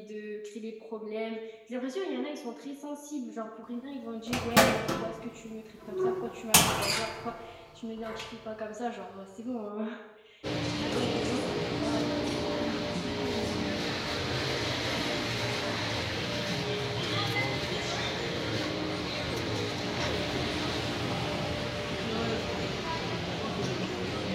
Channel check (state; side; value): identical; both; correlation 1.00